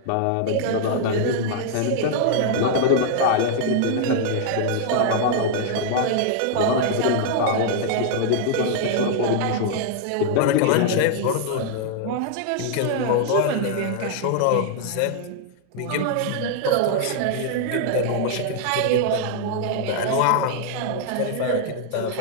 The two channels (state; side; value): different; both; correlation -0.01